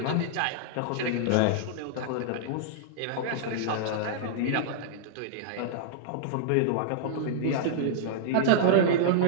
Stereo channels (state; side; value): different; both; correlation -0.02